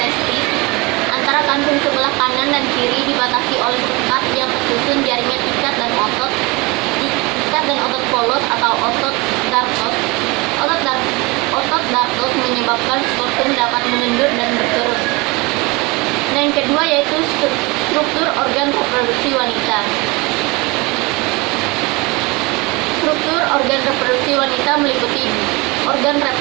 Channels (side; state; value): left; quieter; 25.5 dB